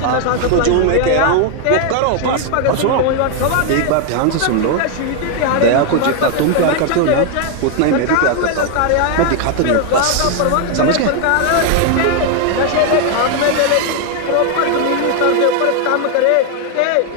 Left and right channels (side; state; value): both; different; correlation 0.00